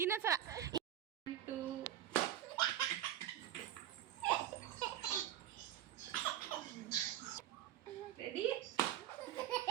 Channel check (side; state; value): left; quieter; 11.7 dB